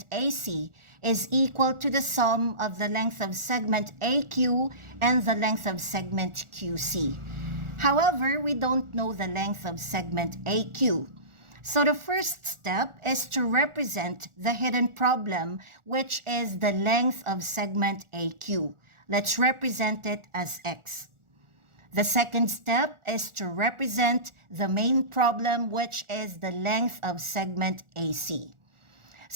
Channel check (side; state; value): left; late; 1.4 ms